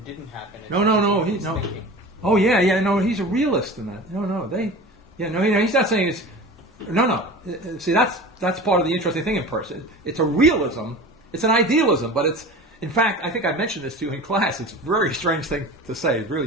happen. No. He's No. thinking. Oh yeah. No, he's a realist in that. No. He's not saying it's. No. See, that's part of the interesting thing in person. It's a realism. It's an idealism, but it's. In fact, I think I mentioned this to you in class. It's a very strange thing to say. It really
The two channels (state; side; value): normal; both; correlation 0.35